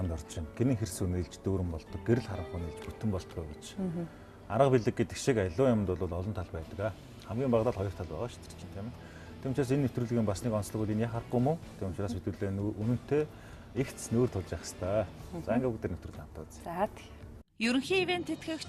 орж байна. Гинэн хэрс үнэлж дүүрэн болдог, гэрэл харанх үнэлж бүтэн болдог гэж. Арга билег гэдэг шиг аливаа юмд бол олон тал байдаг. Хамгийн багадаа 2 тал байгаа шүү дээ тийм ээ. Тийм учраас энэ нэвтрүүлгийн бас нэг онцлог үл энэ харахгүй мó. Тийм учраас хэдүүлээ үнэнтэй ихц нүүр тулж явах хэрэгтэй. За ингээ бүгд нэвтрүүлэг хамтаа үзье. За Ерөнхий ивент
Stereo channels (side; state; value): both; identical; correlation 1.00